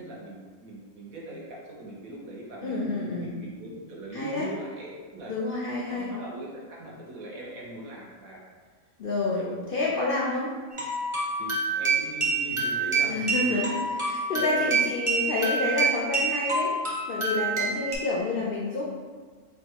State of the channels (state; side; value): normal; both; correlation 0.11